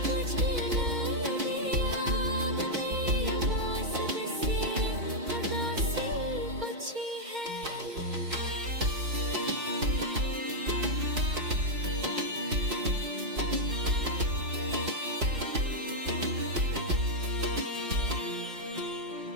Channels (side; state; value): left; late; 4.3 ms